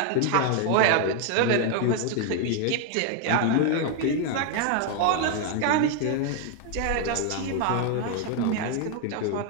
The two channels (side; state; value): both; different; correlation 0.01